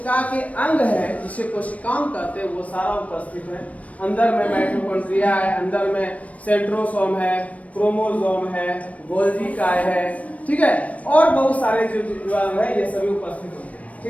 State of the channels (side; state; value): right; late; 0.067 ms